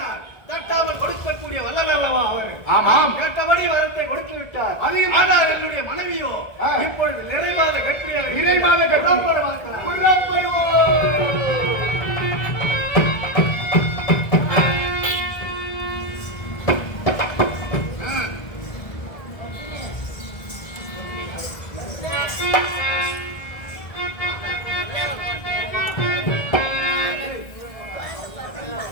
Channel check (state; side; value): late; right; 1.7 ms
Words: தட்டாமல் கொடுக்கக்கூடிய வல்லல் அல்லவா அவர்? ஆமாம், கேட்டபடி வரத்தை கொடுத்து விட்டார். ஆனால் என்னுடைய மனைவியோ இப்பொழுது நிறைவாத